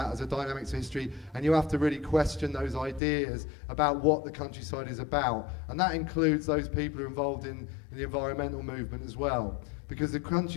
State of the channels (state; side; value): drops out; right; at 3.0 s